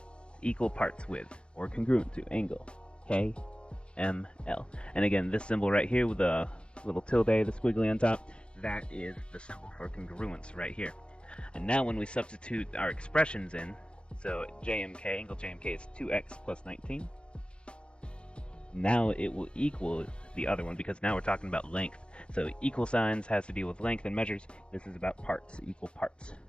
equal parts with, or congruent to, angle KML. And again, this symbol right here with the little tilde, the squiggly on top, that is the symbol for congruence right here. And now when we substitute our expressions in, so JMK, angle JMK is 2x plus 19. Now it will equal the other one because now we're talking about length. So equal signs has to deal with length and measures. This is about parts, equal parts.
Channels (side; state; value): right; late; 0.056 ms